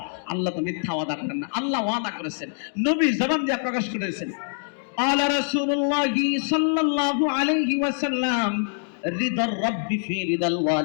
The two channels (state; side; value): silent; right; digital silence